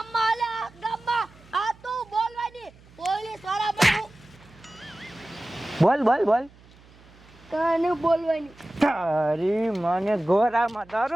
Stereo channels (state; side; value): noise; right; hum, 25 dB below the sound